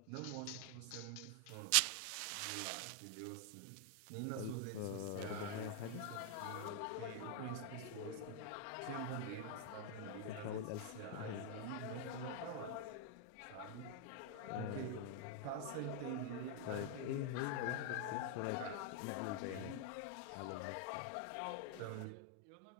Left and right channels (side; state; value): both; different; correlation 0.00